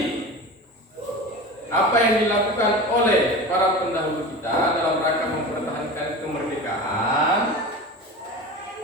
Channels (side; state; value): both; normal; correlation 0.31